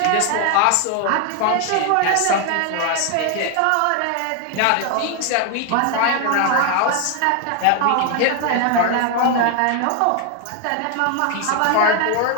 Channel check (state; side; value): different; both; correlation 0.00